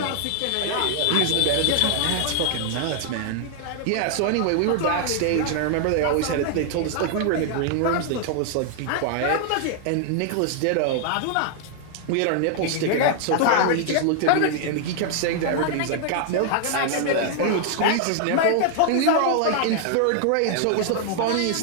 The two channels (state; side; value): different; both; correlation 0.00